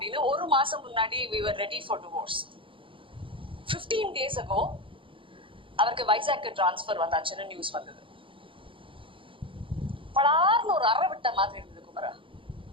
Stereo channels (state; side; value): late; left; 0.25 ms